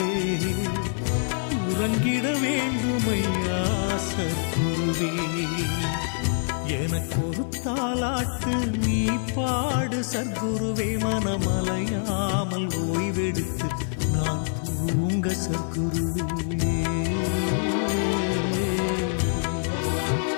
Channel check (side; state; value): right; silent; digital silence